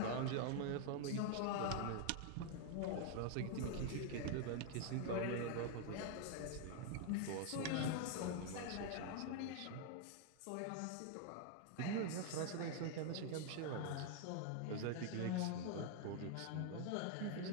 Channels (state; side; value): different; both; correlation 0.00